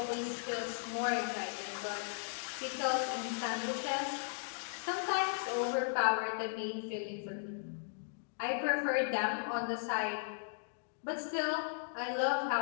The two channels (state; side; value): silent; right; digital silence